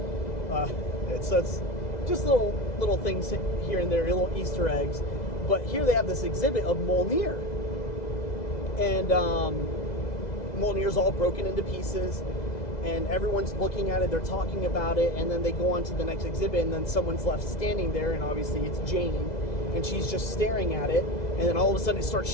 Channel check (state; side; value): late; right; 2.0 ms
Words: It's just little things here and there, little Easter eggs. But here they have this exhibit of Mjolnir, and Mjolnir's all broken into pieces, and everyone's looking at it. They're talking about it, and then they go on to the next exhibit, and then someone's left standing there, and obviously it's Jane, and she's just staring at it, and then all of a sudden it starts